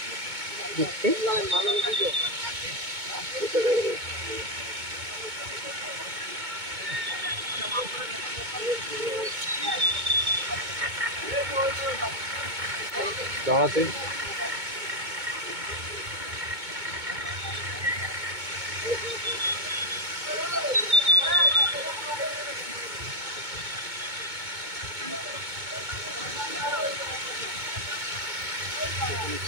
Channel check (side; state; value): left; late; 2.2 ms